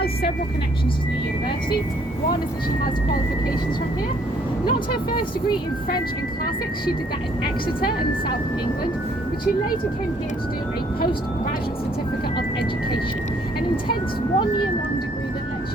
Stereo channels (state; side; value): normal; both; correlation 0.64